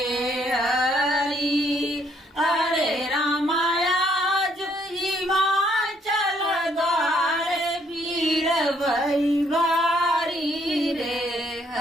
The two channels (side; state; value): both; normal; correlation 0.68